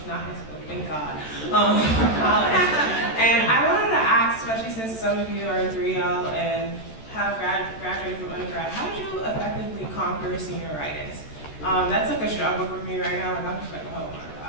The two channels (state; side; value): late; right; 13 ms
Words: not high school, thank God, college. And I wanted to ask, especially since some of you are in 3L and have graduated from undergrad, how did you effectively conquer senioritis? That's like a struggle for me right now. Like I'm just like, oh my